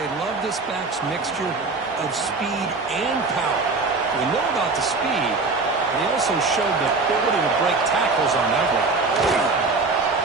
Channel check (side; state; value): left; quieter; 3.8 dB